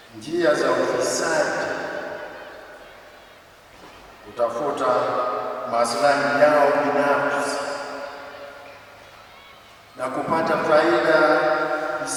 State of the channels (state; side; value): identical; both; correlation 1.00